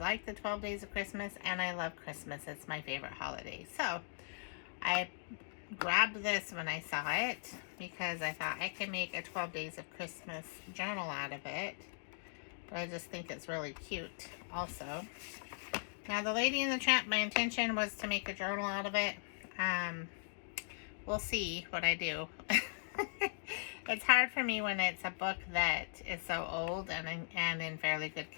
the 12 Days of Christmas, and I love Christmas. It's my favorite holiday. So I grabbed this when I saw it because I thought I could make a 12 Days of Christmas journal out of it. But I just think it's really cute also. Now, the Lady and the Tramp, my intention was to make a journal out of it. We'll see what I do. It's hard for me when it's a book that is so old and in fairly good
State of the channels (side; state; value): right; silent; digital silence